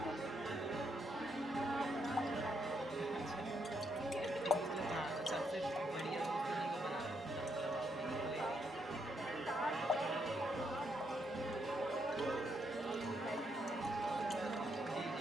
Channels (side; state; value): both; normal; correlation 0.77